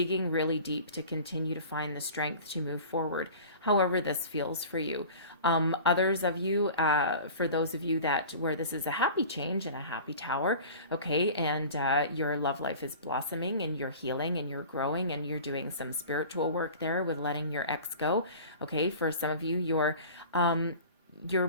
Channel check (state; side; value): inverted; both; correlation -0.40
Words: really deep to continue to find the strength to move forward, however this feels for you. Others of you, for those of you where this is a happy change and a happy tower, okay, and your love life is blossoming and you're healing and you're growing and you're doing some spiritual work there with letting your ex go. Okay. For some of you,